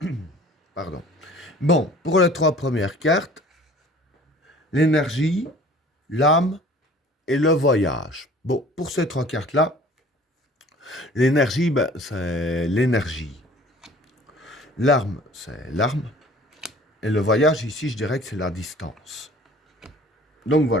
Pardon. Bon, pour les trois premières cartes, l'énergie, l'âme et le voyage. Bon, pour ces trois cartes-là, l'énergie, c'est l'énergie. L'arme, c'est l'arme. Et le voyage, ici, je dirais que c'est la distance. Donc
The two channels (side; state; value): both; normal; correlation 0.49